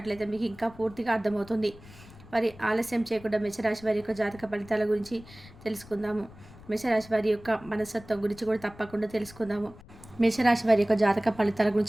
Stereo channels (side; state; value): left; noise; rumble, 21 dB below the sound